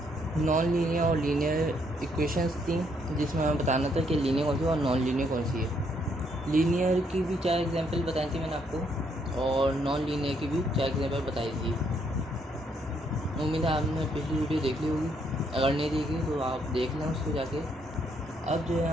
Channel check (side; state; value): both; normal; correlation 0.72